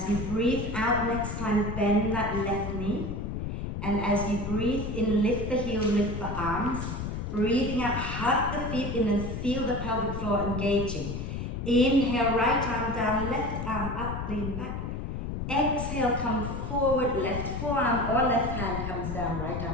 you breathe out next time, bend that left knee. And as you breathe in, lift the heel, lift the arms. Breathing out, hug the feet in and feel the pelvic floor engaging. Inhale, right arm down, left arm up, lean back. Exhale, come forward, left forearm or left hand comes down, right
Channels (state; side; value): noise; left; rumble, 4 dB below the sound